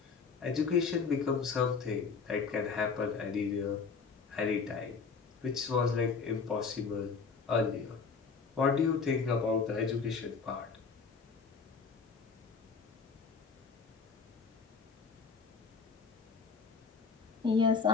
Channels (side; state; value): right; quieter; 5.2 dB